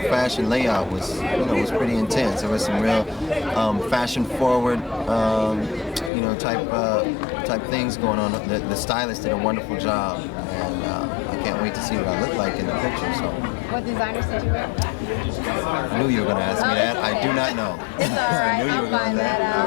fashion layout was pretty intense. There was some real fashion forward type things going on. The stylist did a wonderful job, and I can't wait to see what I look like in the picture. So. What designers did you wear? I knew you were going to ask me that. I do not know. It's all right. I knew you were going to that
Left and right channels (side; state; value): right; drops out; at 6.1 s